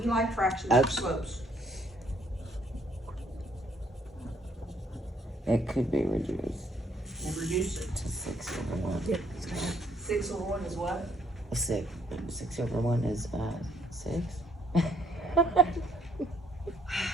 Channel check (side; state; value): both; normal; correlation 0.68